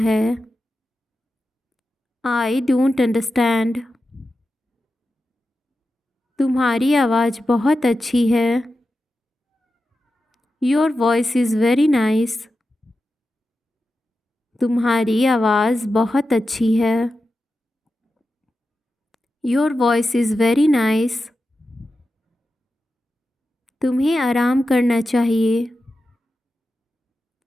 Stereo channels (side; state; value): both; normal; correlation 0.91